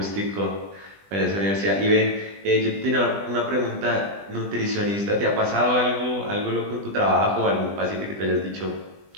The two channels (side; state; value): left; late; 20 ms